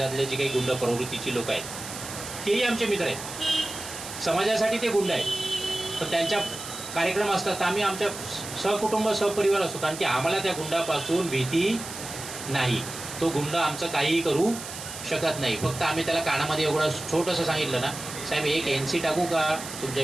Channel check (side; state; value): right; noise; hiss, 10 dB below the sound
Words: जे काही गुंड प्रवृत्तीची लोक आहेत तेही आमचे मित्र आहेत, समाजासाठी ते गुंड आहेत, पण त्यांच्या कार्यक्रम असतात तर आम्ही आमच्या सहकुटुंब सहपरिवार असतो, कारण की आम्हाला त्या गुंडापासून भीती नाही. तो गुंड आमचं काहीही करू शकत नाही. फक्त आम्ही त्याला कानामध्ये एवढं छोटंसं सांगितलं ना, साहेब एक NC टाकू का तुमच्या